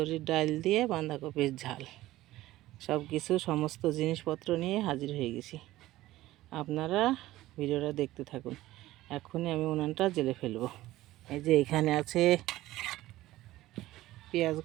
ডাল দিয়ে বাঁধাকপির ঝাল। সব কিছু সমস্ত জিনিসপত্র নিয়ে হাজির হয়ে গেছি। আপনারা ভিডিওটা দেখতে থাকুন। এখনই আমি উনানটা জ্বেলে ফেলবো। এই যে এখানে আছে পেঁয়াজ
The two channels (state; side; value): quieter; left; 16.2 dB